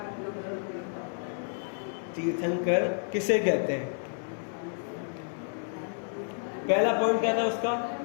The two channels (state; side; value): silent; right; 56 dB below the other